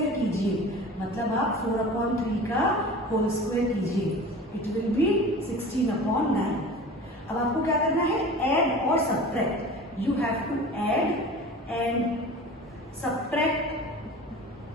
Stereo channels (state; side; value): normal; both; correlation 0.38